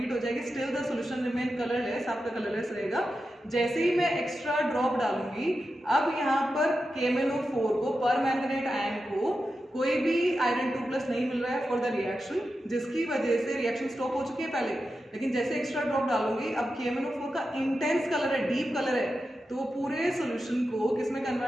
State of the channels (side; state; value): both; normal; correlation 0.90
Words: हो जाएगी। Still the solution remain colourless, आपका कलरलेस रहेगा। जैसे ही मैं एक्स्ट्रा ड्रॉप डालूंगी, अब यहाँ पर KMnO4 को, पर मैंगनेट आयन को कोई भी आयरन 2+ नहीं मिल रहा है फॉर द रिएक्शन, जिसकी वजह से रिएक्शन स्टॉप हो चुकी है पहले। लेकिन जैसे एक्स्ट्रा ड्रॉप डालूंगी, अब KMnO4 का इंटेंस कलर है, डीप कलर है, तो वो पूरे सोल्यूशन को किस में